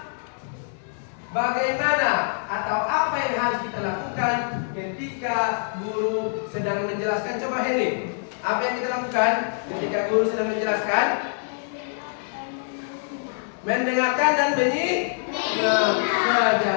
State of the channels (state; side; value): silent; right; digital silence